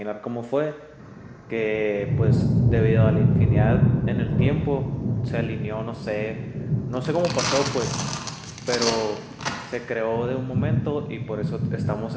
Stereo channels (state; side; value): identical; both; correlation 1.00